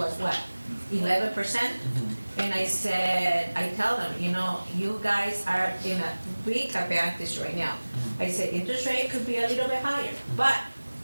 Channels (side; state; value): both; inverted; correlation -1.00